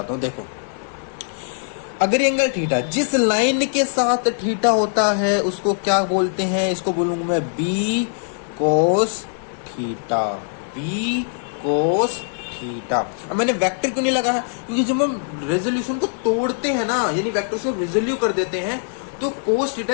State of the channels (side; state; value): right; silent; 64 dB below the other